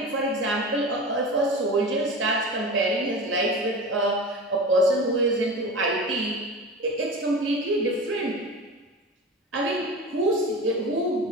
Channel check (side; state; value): both; normal; correlation 0.31